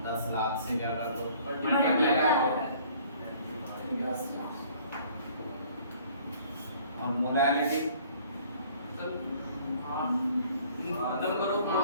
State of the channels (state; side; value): inverted; both; correlation -0.55